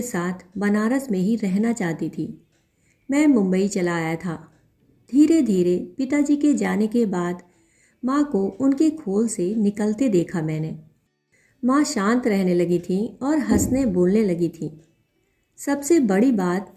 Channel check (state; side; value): identical; both; correlation 1.00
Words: साथ बनारस में ही रहना चाहती थी। मैं मुंबई चला आया था। धीरे धीरे पिताजी के जाने के बाद माँ को उनके खोल से निकलते देखा मैंने। माँ शांत रहने लगी थी और हंसने बोलने लगी थी। सबसे बड़ी बात